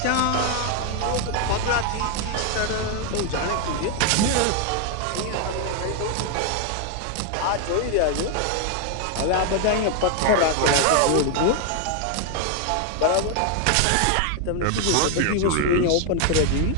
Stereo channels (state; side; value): different; both; correlation 0.00